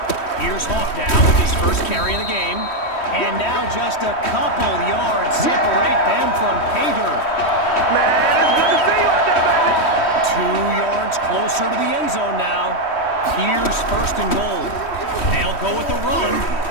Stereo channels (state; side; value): late; right; 3.1 ms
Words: Here's Hawk now with his first carry of the game. And now just a couple yards separate them from pay dirt. 2 yards closer to the end zone now. Here's 1st and goal. They'll go with the run.